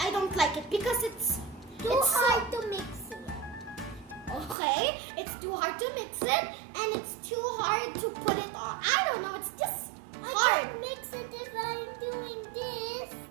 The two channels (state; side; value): drops out; left; at 4.5 s